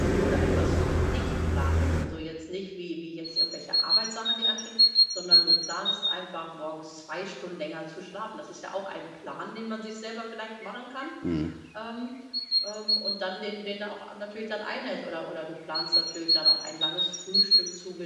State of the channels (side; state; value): both; identical; correlation 1.00